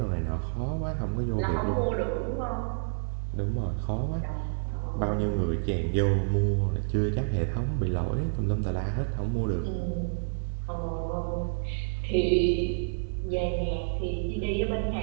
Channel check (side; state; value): left; silent; digital silence